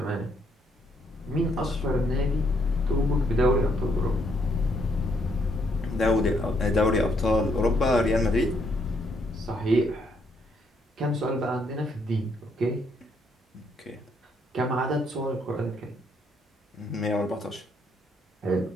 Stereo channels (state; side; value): normal; both; correlation 0.72